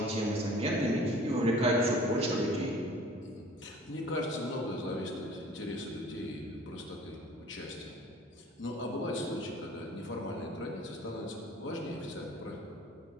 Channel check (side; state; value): both; normal; correlation 0.48